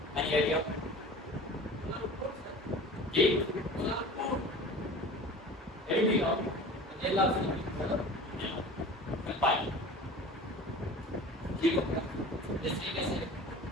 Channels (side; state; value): both; normal; correlation 0.39